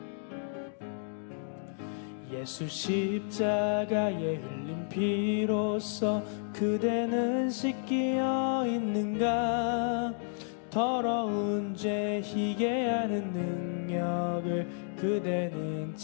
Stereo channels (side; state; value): right; silent; digital silence